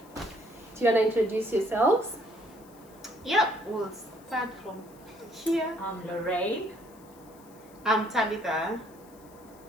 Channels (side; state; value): left; noise; hiss, 26 dB below the sound